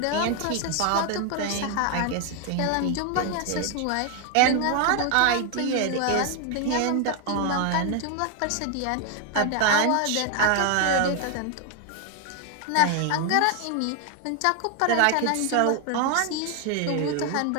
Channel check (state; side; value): different; both; correlation 0.00